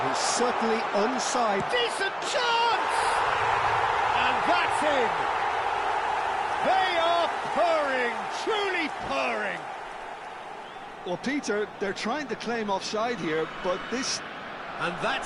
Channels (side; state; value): both; identical; correlation 1.00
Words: he's certainly onside. Decent chance! And that's in. They are purring, truly purring. Well, Peter, they're trying to claim offside here, but this... And